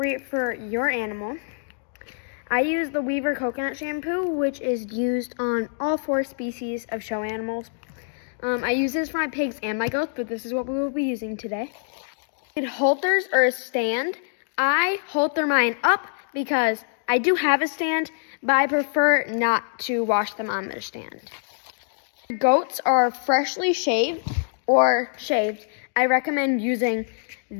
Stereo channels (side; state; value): right; silent; digital silence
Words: for your animal. I use the Weaver coconut shampoo, which is used on all 4 species of show animals. I use this for my pigs and my goats, but this is what we will be using today. Halters or a stand. I halter mine up because I do have a stand, but I prefer not to wash them on their stand. Goats are freshly shaved or shaved. I recommend using